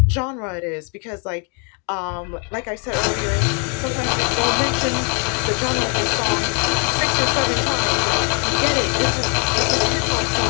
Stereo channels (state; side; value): quieter; right; 34.3 dB